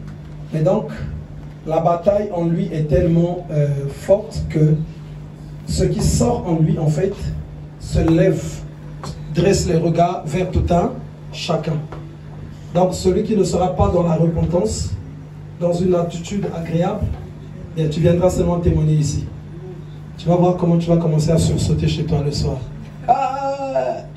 Mais donc, la bataille en lui est tellement forte que ce qui sort en lui, en fait, se lève, dresse les regards vers tout un chacun. Donc, celui qui ne sera pas dans la repentance, dans une attitude agréable, bien, tu viendras seulement témoigner ici. Tu vas voir comment tu vas commencer à sursauter chez toi le soir. Ah,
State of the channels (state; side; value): identical; both; correlation 1.00